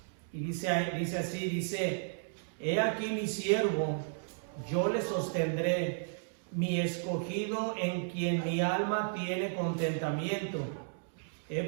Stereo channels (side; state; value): left; silent; digital silence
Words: y dice así, he aquí mi siervo, yo le sostendré, mi escogido en quien mi alma tiene contentamiento. He